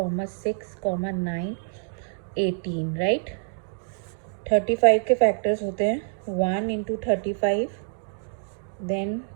6, 9, 18. राइट. 35 के फैक्टर्स होते हैं 1 इंटू 35, देन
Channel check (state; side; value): silent; left; digital silence